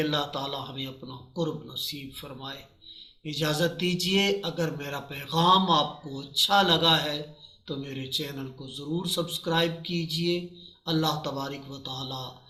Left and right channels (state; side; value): identical; both; correlation 1.00